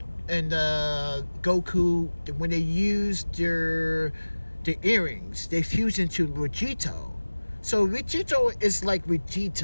and Goku, when they use their earrings, they fuse into Vegito. So Vegito is like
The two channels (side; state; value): both; inverted; correlation -1.00